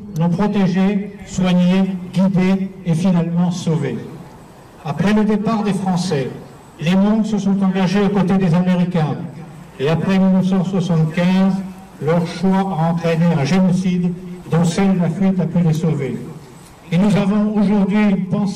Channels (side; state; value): both; identical; correlation 1.00